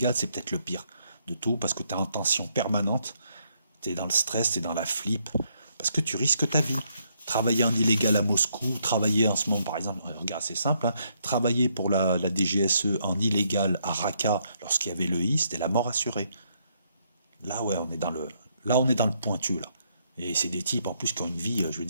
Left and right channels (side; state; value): both; inverted; correlation -0.74